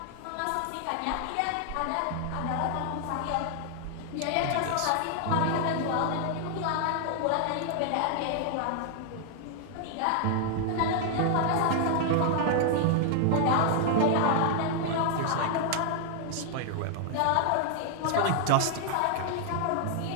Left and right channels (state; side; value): different; both; correlation 0.00